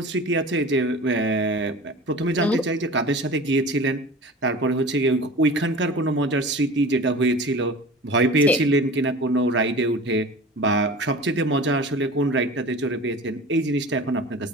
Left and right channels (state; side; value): normal; both; correlation 0.37